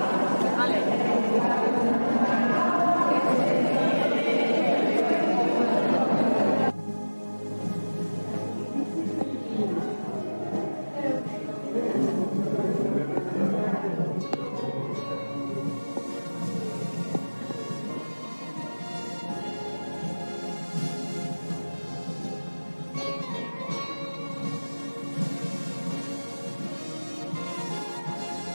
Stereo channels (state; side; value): inverted; both; correlation -1.00